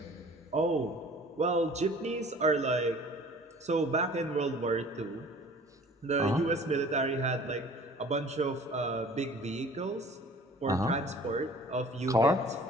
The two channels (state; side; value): normal; both; correlation 0.48